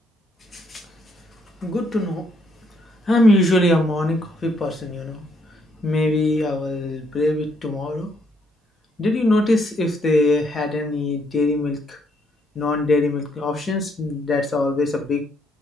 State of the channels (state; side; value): normal; both; correlation 0.72